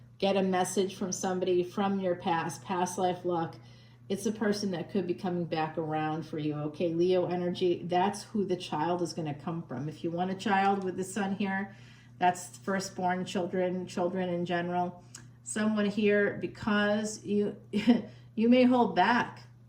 get a message from somebody from your past life luck. It's a person that could be coming back around for you. Okay, Leo energy, that's who the child is going to come from. If you want a child with the sun here, that's firstborn children, children in general. Someone here, because you you may hold back.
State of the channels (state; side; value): identical; both; correlation 1.00